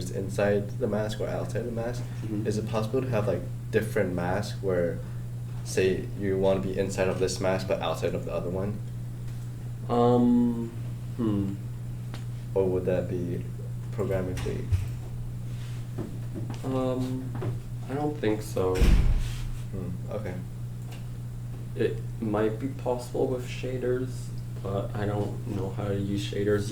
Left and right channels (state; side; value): identical; both; correlation 1.00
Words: inside the mask or outside the mask. Mhm. Is it possible to have like different masks where, say, you want to be inside of this mask but outside of the other one? Or would that be programmatically? I don't think so. Okay. It might be possible with shaders, but I don't know how to use shaders